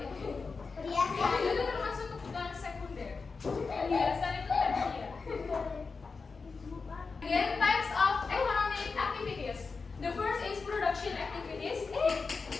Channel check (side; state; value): right; quieter; 4.6 dB